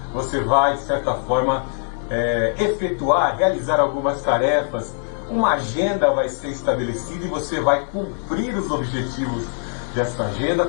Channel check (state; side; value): silent; right; 64 dB below the other